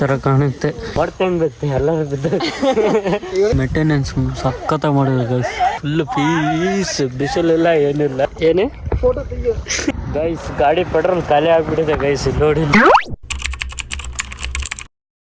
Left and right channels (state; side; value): identical; both; correlation 1.00